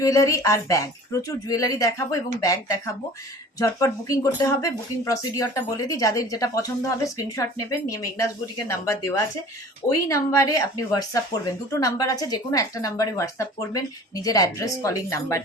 আর ব্যাগ, প্রচুর জুয়েলারি দেখাবো এবং ব্যাগ দেখাবো। ঝটপট বুকিং করতে হবে। বুকিং প্রসিডিওরটা বলে দিই, যাদের যেটা পছন্দ হবে স্ক্রিনশট নেবেন, নিয়ে মেঘনাস বুটিকের নাম্বার দেওয়া আছে, ওই নাম্বারে আপনি হোয়াটসঅ্যাপ করবেন। দুটো নাম্বার আছে, যে কোনো একটা নাম্বারে হোয়াটসঅ্যাপ করবেন নিজের অ্যাড্রেস, কলিং নাম্বার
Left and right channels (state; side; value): normal; both; correlation 0.44